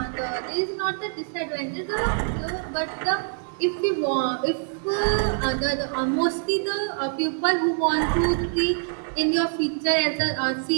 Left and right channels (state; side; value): silent; left; 61 dB below the other